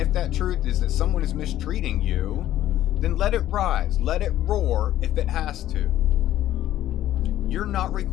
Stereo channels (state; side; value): quieter; right; 13.1 dB